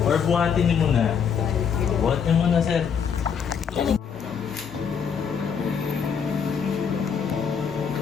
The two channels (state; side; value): quieter; right; 6.9 dB